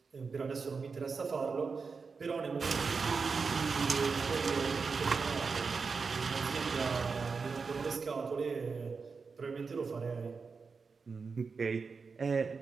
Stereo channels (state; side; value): quieter; left; 4.9 dB